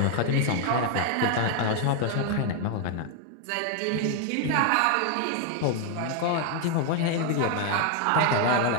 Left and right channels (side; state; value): both; different; correlation 0.00